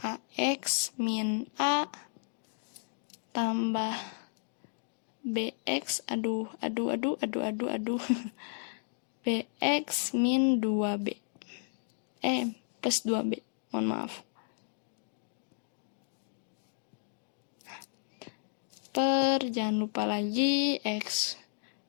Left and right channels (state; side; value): silent; right; digital silence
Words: ax min a tambah bx, bx min 2b. Plus 2b, mohon maaf. Per, jangan lupa lagi, x